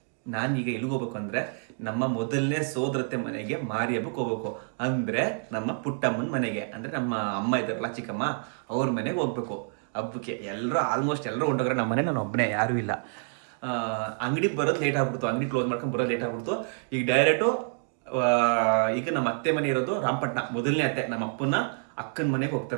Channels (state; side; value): silent; left; 59 dB below the other